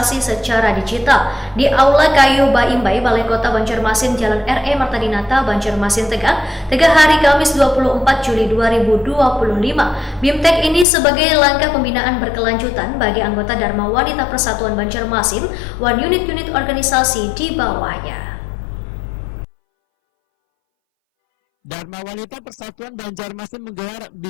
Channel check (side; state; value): right; drops out; at 10.9 s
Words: secara digital di Aula Kayu Baimbai, Balai Kota Banjarmasin, Jalan R.E. Marta Dinata, Banjarmasin, Tegal hari Kamis 24 Juli 2025. BIMTEK ini sebagai langkah pembinaan berkelanjutan bagi anggota Dharma Wanita Persatuan Banjarmasin dan unit-unit organisasi di bawahnya. Dharma Wanita Persatuan Banjarmasin menggelar